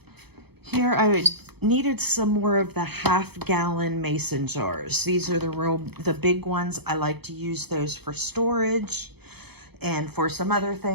Here I needed some more of the half-gallon mason jars. These are the big ones. I like to use those for storage and for some other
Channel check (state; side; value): late; left; 0.97 ms